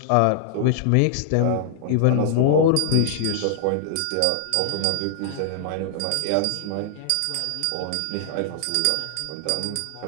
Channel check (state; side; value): different; both; correlation -0.01